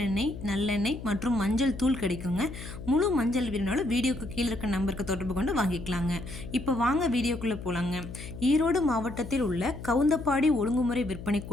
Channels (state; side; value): noise; left; hum, 11 dB below the sound